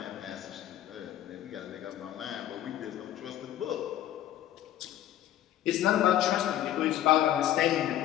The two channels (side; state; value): right; quieter; 12.4 dB